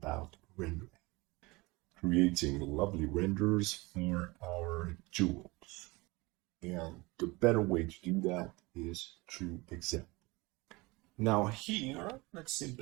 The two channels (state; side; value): quieter; left; 23.7 dB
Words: rendering. Creating lovely renders for our jewels. And the better way to do that is through example. Now here, let's